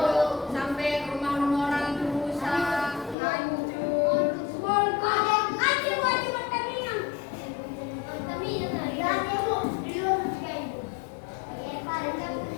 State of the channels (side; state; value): right; drops out; at 3.2 s